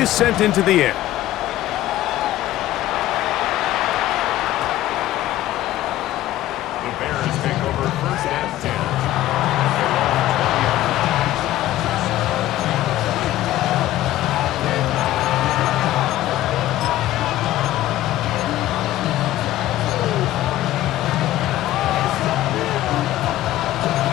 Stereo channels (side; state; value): right; quieter; 14.6 dB